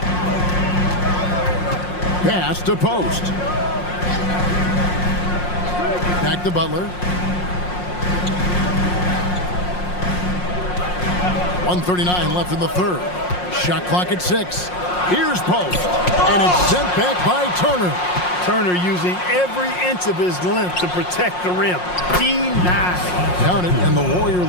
Pass to post. Back to Butler. 1:39 left in the third. Shot clock at 6. Here's post. And it's sent back by Turner. Turner using every inch of his length to protect the rim. Denied. Counted, and the Warrior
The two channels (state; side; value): late; right; 5.6 ms